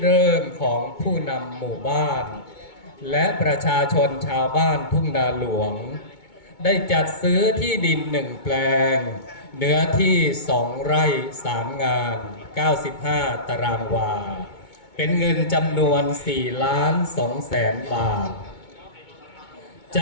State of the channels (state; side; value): late; right; 2.2 ms